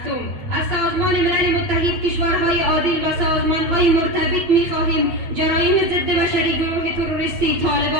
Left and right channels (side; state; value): left; late; 8.5 ms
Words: از سازمان ملل متحد، کشورهای عادل و سازمان‌های مرتبط می‌خواهیم جرایم ضد بشری گروه تروریستی